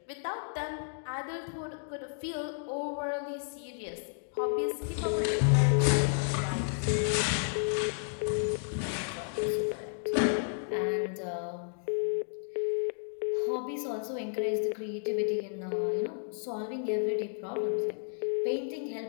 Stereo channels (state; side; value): silent; right; digital silence